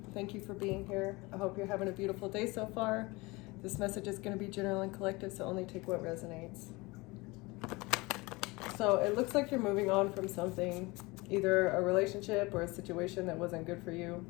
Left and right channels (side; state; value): right; quieter; 23.9 dB